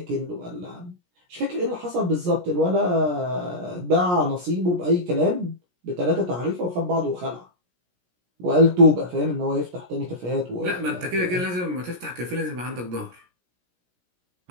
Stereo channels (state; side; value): late; left; 17 ms